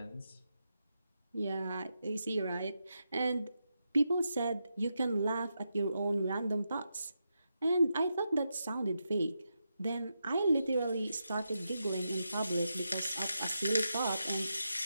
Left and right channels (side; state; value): both; inverted; correlation -0.86